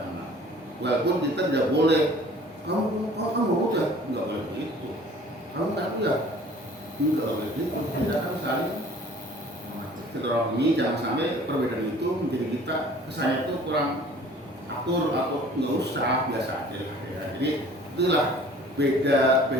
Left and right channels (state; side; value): normal; both; correlation 0.50